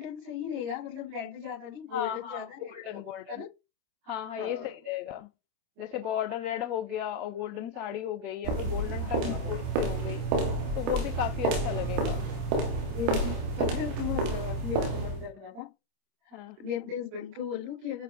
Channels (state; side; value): late; left; 26 ms